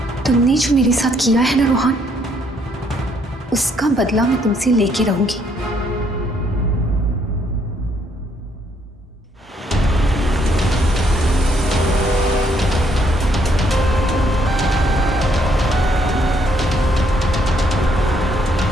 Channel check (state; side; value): normal; both; correlation 0.70